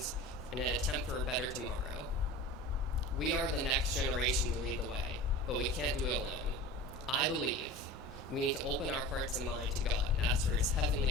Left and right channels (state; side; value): normal; both; correlation 0.35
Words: in an attempt for a better tomorrow. We are the next generation to lead the way, but we can't do it alone. I believe we need to open our hearts and mind to God and ask for His